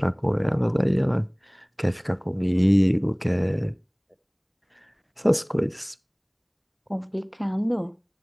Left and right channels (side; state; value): both; identical; correlation 1.00